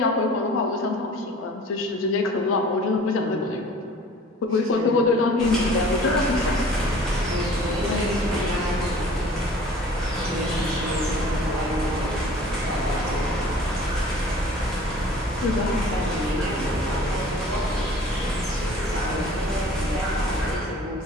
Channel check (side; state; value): both; normal; correlation 0.47